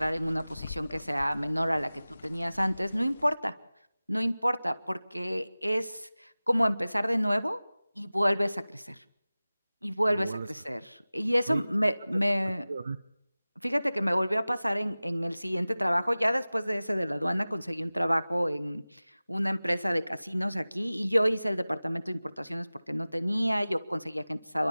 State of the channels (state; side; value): inverted; both; correlation -0.98